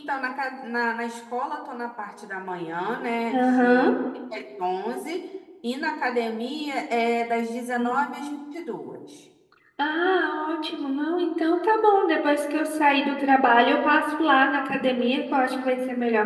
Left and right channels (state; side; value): identical; both; correlation 1.00